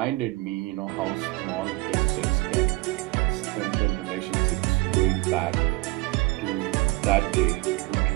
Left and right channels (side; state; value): left; quieter; 22.8 dB